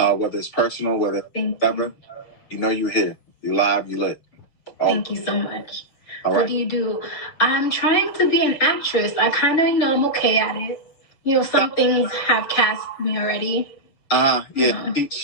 whether it's personal, whether whatever, you're here. You live, you lit. Thank you so much. All right. What do you do? I'm trying to be an actress. I kind of, I'm okay at it. Some things have cast me already. Yeah.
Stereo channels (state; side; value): late; right; 7.2 ms